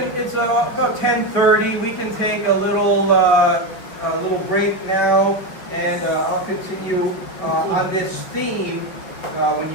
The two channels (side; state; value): right; late; 5.3 ms